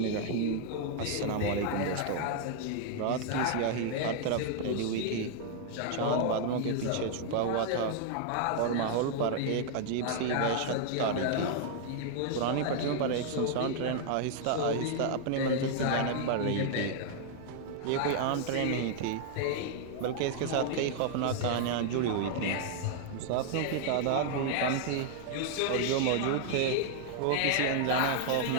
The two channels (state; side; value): different; both; correlation 0.00